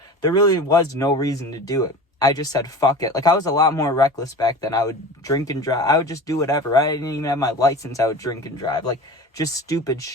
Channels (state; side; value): normal; both; correlation 0.35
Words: there really was no reason to do it. I just said, fuck it. I was a lot more reckless back then. I would drink and drive. I would just do whatever, right? I didn't even have my license. I would drink and drive. Just stupid